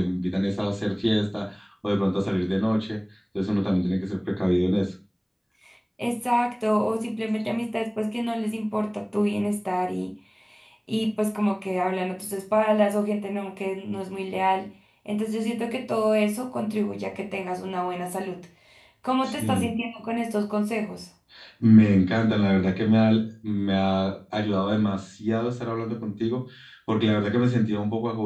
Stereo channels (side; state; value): both; identical; correlation 1.00